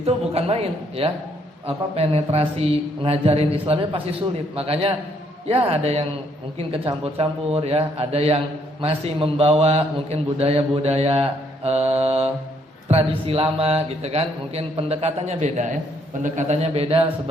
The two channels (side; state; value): both; normal; correlation 0.69